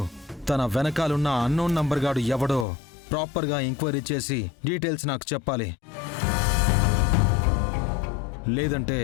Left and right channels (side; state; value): right; drops out; at 2.7 s